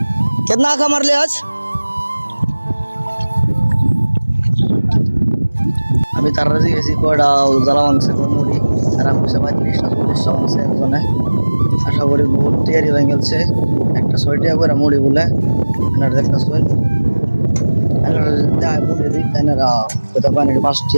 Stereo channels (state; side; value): inverted; both; correlation -1.00